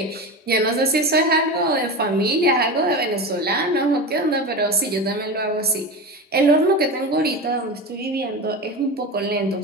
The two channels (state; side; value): normal; both; correlation 0.25